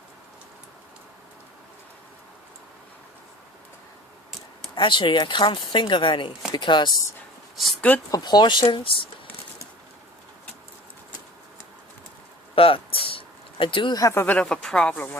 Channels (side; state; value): both; normal; correlation 0.42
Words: Actually, I can't think of any because it's good proportions, but I do have a bit of a problem